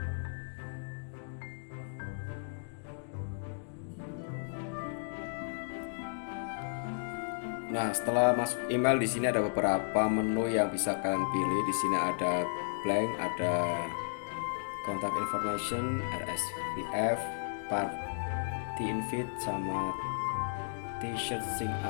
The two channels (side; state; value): right; silent; digital silence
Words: Nah, setelah masuk email di sini ada beberapa menu yang bisa kalian pilih. Di sini ada blank, ada contact information, RSVF, party invite, sama t-shirt sync